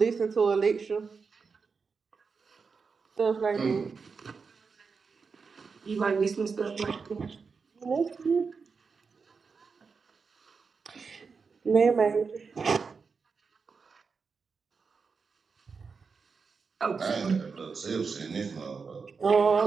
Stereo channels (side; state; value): left; quieter; 5.1 dB